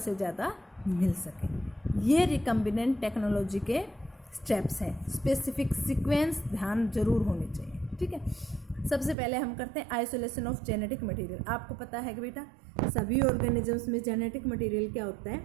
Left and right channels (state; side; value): drops out; left; at 9.2 s